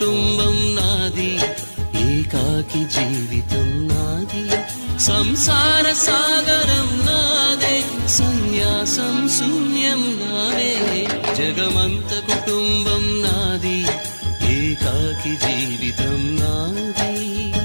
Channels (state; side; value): inverted; both; correlation -1.00